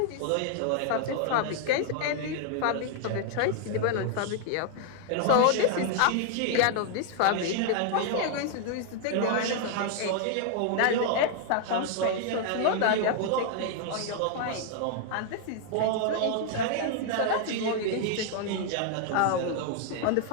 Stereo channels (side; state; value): both; different; correlation 0.00